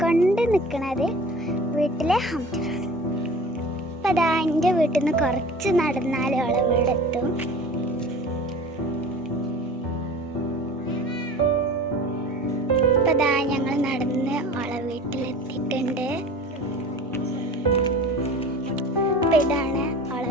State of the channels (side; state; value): both; normal; correlation 0.40